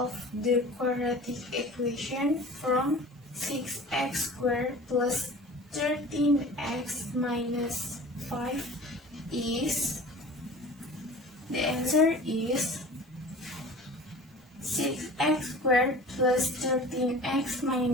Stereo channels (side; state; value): both; normal; correlation 0.41